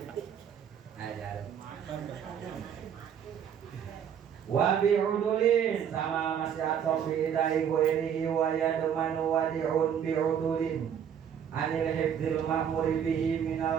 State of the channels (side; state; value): left; quieter; 8.5 dB